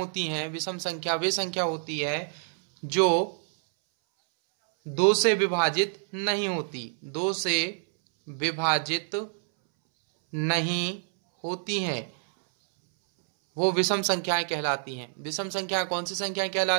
हैं, विषम संख्या वे संख्या होती है जो 2 से विभाजित नहीं होती, 2 से विभाजित नहीं होती हैं, वो विषम संख्याएं कहलाती हैं। विषम संख्या कौन सी संख्याएं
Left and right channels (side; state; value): left; silent; 60 dB below the other